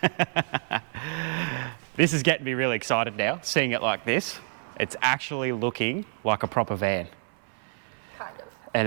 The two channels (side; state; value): left; silent; 60 dB below the other